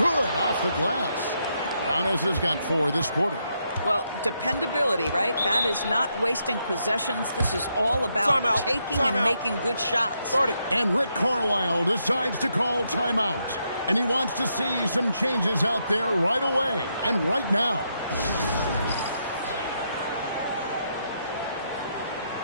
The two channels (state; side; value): inverted; both; correlation -0.79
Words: off the glass. Giannis has got 4 this quarter. Well, dependability, right? That is not wasting possessions. This is all about taking and making good shots. And Rick Carlisle decides to call timeout. And he wants to see some changes out there right away and right now.